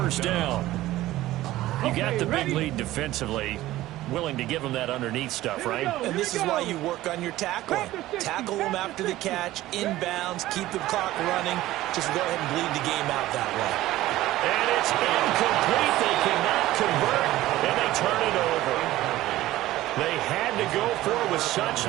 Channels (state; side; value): quieter; left; 15.9 dB